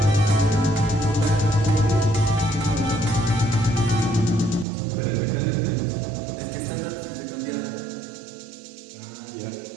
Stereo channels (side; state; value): left; drops out; at 4.7 s